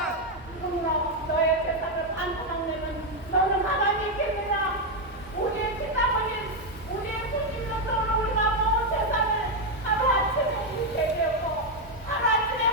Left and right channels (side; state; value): both; normal; correlation 0.04